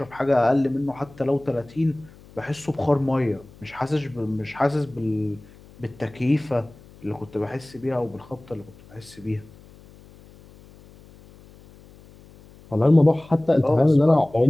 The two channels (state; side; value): noise; left; hum, 23 dB below the sound